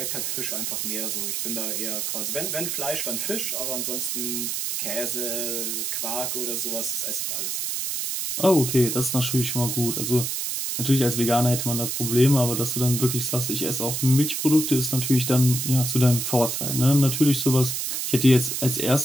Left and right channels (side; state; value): right; noise; hiss, 2 dB below the sound